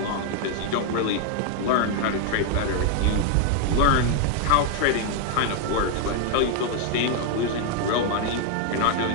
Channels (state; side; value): different; both; correlation 0.01